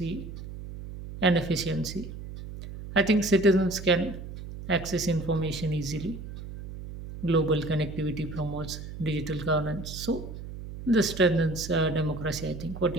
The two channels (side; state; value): right; noise; hum, 11 dB below the sound